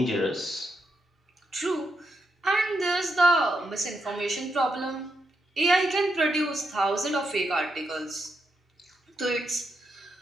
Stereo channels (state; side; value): normal; both; correlation 0.82